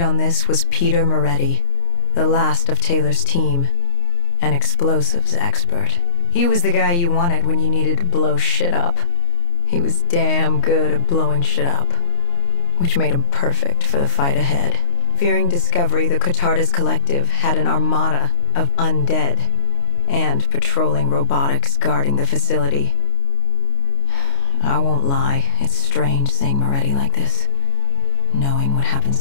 on this was Peter Moretti, the last of Taylor's team, an explosives expert. He was the guy you wanted when you needed to blow shit up. He was damn good at blowing shit up, which made him perfect for the fight ahead. Fearing discovery, the Cotardus Collective had an armada of undead, and patrolling robotics guarding the facility. I won't lie, it's strange seeing Moretti like this, knowing what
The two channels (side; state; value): right; late; 29 ms